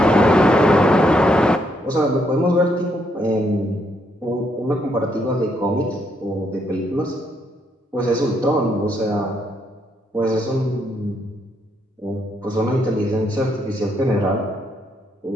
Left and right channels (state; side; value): normal; both; correlation 0.75